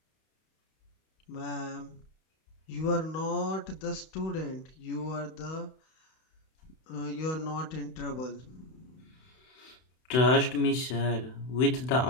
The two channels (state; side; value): late; right; 32 ms